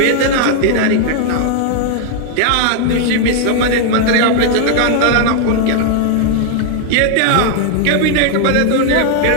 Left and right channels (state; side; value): different; both; correlation 0.00